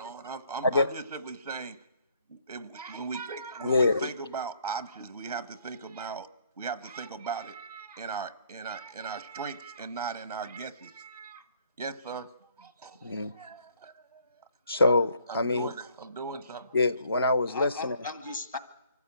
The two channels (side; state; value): both; inverted; correlation -0.65